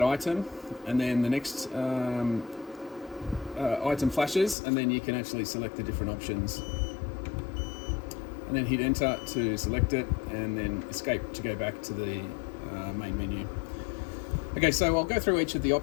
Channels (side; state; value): right; drops out; at 4.5 s